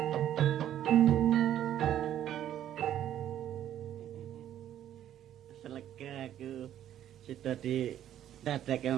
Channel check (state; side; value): quieter; left; 11.2 dB